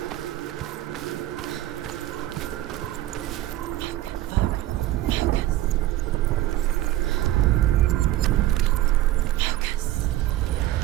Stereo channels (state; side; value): quieter; left; 14.8 dB